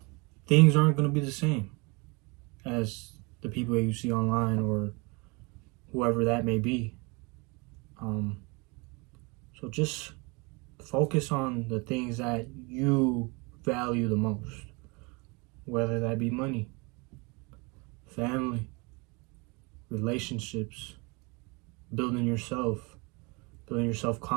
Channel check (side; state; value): left; quieter; 28.5 dB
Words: things aren't going to be the same as the people that you see online or whoever that may be. So just focus on the things that you value the most, whether that be money, family, relationships, building your